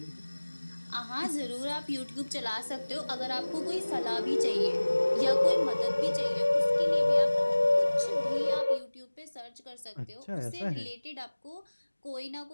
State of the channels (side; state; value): both; inverted; correlation -1.00